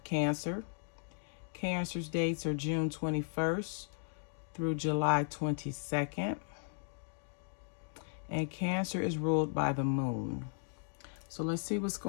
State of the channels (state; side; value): silent; right; digital silence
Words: Cancer. Cancer's dates are June 21st through July 22nd, and Cancer is ruled by the moon. So let's see what's